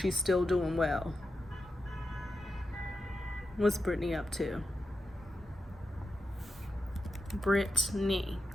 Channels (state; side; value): normal; both; correlation 0.89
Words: still doing well. What's Britney up to? Britney.